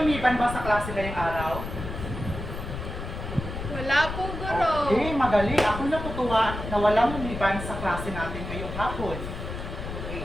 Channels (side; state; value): left; noise; rumble, 7 dB below the sound